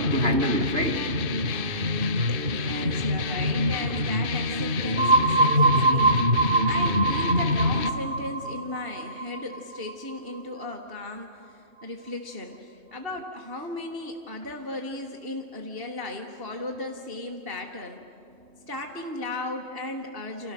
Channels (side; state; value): left; late; 2.6 ms